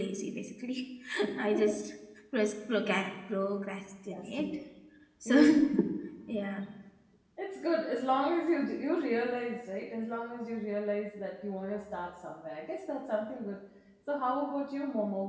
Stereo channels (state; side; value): identical; both; correlation 1.00